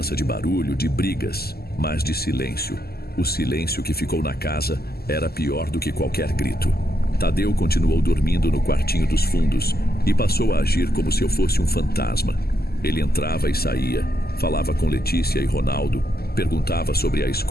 de barulho, de brigas, mas de silêncio. O silêncio que ficou na casa era pior do que qualquer grito. Tadeu continuou dormindo no quartinho dos fundos e passou a agir como se eu fosse um fantasma. Ele entrava e saía, falava com Letícia e Ronaldo, perguntava sobre a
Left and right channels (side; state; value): right; late; 0.46 ms